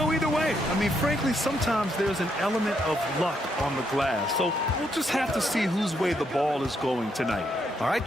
either way. I mean, frankly, sometimes there's an element of luck on the glass. So we'll just have to see whose way the ball is going tonight. All right,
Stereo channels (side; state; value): both; normal; correlation 0.76